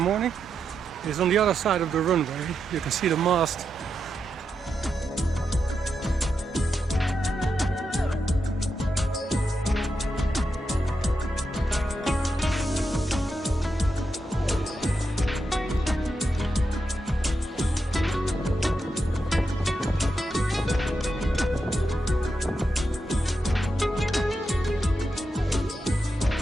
is on the other side of the runway. You can see the mast.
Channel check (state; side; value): normal; both; correlation 0.86